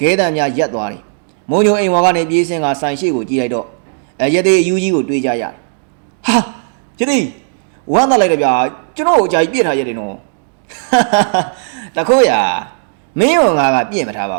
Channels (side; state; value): left; silent; digital silence